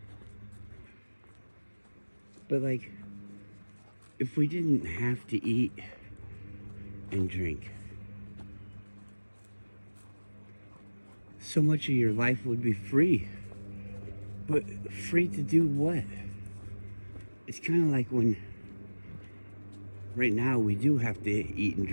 But like, if we didn't have to eat and drink, so much of your life would be free. But free to do what? It's kind of like when, right now we do have to eat and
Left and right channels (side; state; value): both; inverted; correlation -1.00